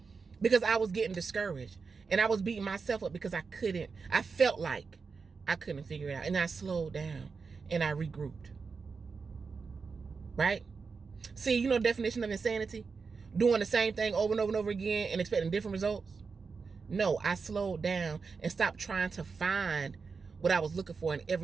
Because I was getting discouraged. And I was beating myself up because I felt like I couldn't figure it out. And I slowed down and I regrouped. Right? See, you know the definition of insanity? Doing the same thing over and over and over again and expecting different results? No, I slowed down and stopped trying to find what I was looking for in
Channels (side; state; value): left; quieter; 5.0 dB